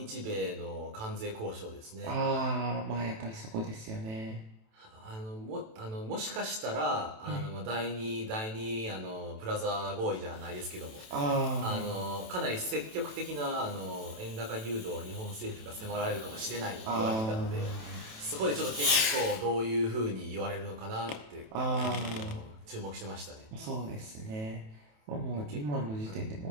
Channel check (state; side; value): late; left; 27 ms